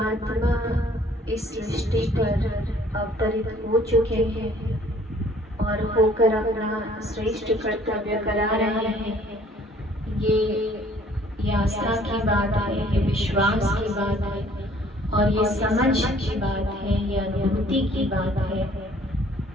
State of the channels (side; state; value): both; normal; correlation 0.57